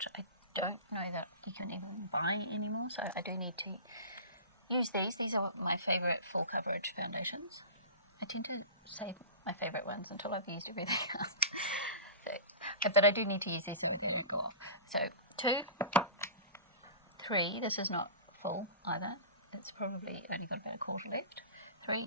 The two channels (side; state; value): both; inverted; correlation -0.33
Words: I don't know that you can even buy anymore, so I do need to use these. These are my favourite full coverage foundations. I tend to save my favourite ones until I've used everything else. Okay. But I do need to use these so they don't go off. So 2, 3, this is not full either. It's probably only got about a quarter left.